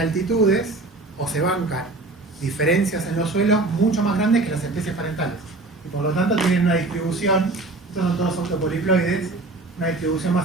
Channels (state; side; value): quieter; left; 3.2 dB